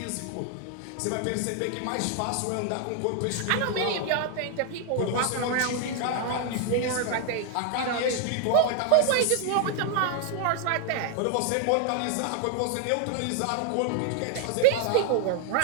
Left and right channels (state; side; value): different; both; correlation 0.00